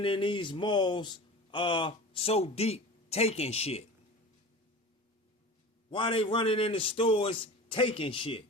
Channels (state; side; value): normal; both; correlation 0.35